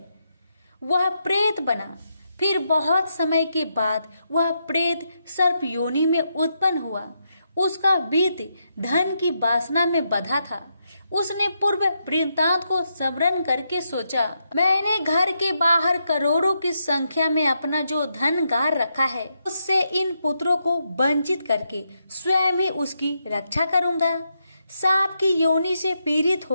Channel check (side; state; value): both; inverted; correlation -0.81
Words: वह प्रेत बना। फिर बहुत समय के बाद वह प्रेत सर्प योनि में उत्पन्न हुआ। उसका बीत धन की वासना में बंधा था। उसने पूर्व वृत्तांत को स्मरण करके सोचा, मैंने घर के बाहर करोड़ों की संख्या में अपना जो धन गार रखा है, उससे इन पुत्रों को वंचित करके स्वयं ही उसकी रक्षा करूंगा। सांप की योनि से पीड़ित